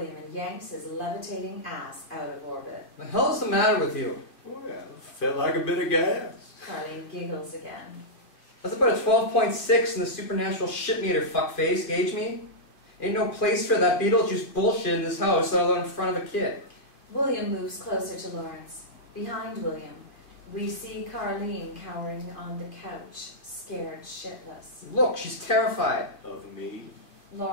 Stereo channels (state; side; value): late; right; 2.4 ms